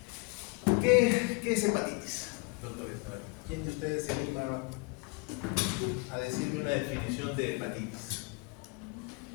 ¿Qué es hepatitis, doctores? ¿Quién de ustedes se anima a decirme una definición de hepatitis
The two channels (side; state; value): right; quieter; 28.1 dB